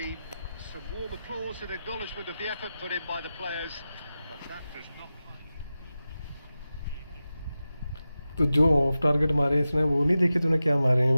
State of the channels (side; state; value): both; inverted; correlation -0.93